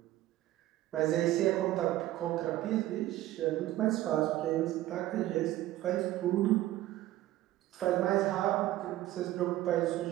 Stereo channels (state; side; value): quieter; left; 15.1 dB